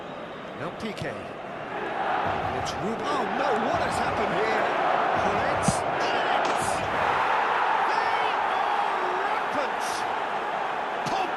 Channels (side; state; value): both; identical; correlation 1.00